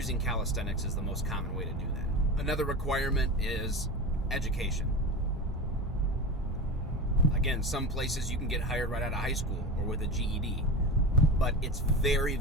calisthenics is the most common way to do that. Another requirement is education. Again, some places you can get hired right out of high school or with a GED, but it's very,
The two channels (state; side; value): normal; both; correlation 0.28